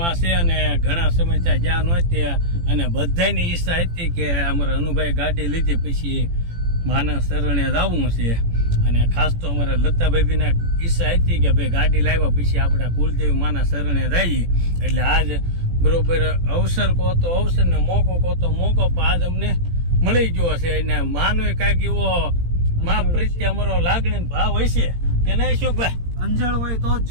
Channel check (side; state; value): left; late; 18 ms